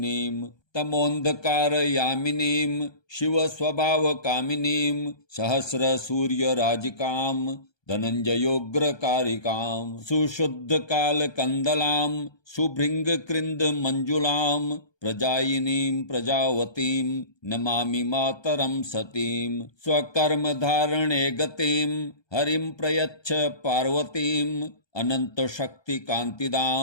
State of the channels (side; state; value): right; late; 1.2 ms